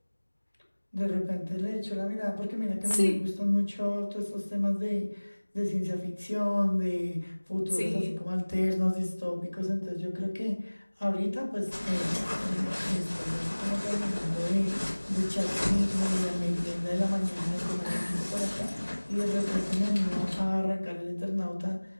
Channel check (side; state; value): both; inverted; correlation -1.00